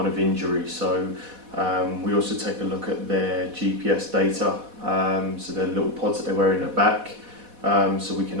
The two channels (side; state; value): left; late; 4.1 ms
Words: of injury. So we also take a look at their GPS data, so their little pods that they wear in the back, so we